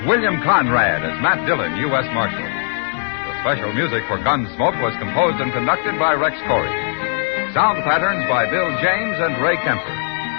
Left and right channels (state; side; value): silent; right; 67 dB below the other